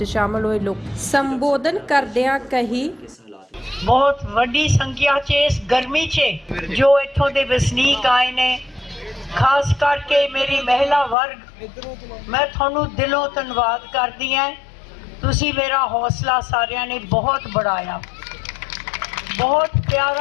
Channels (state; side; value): drops out; right; at 11.2 s